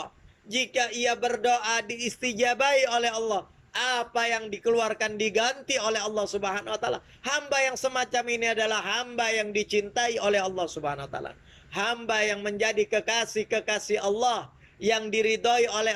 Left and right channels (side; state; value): both; identical; correlation 1.00